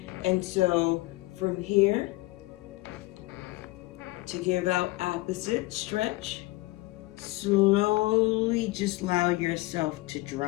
And so from here to give out opposite stretch. Slowly just allow yourself to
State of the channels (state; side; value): quieter; right; 20.7 dB